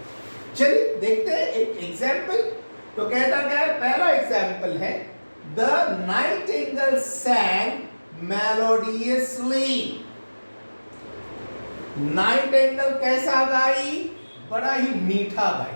चलिए देखते हैं एक एग्जाम्पल. तो कहता क्या है? पहला एग्जाम्पल है, the Nightingale sang melodiously. Nightingale कैसा गाई? बड़ा ही मीठा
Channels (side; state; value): both; inverted; correlation -1.00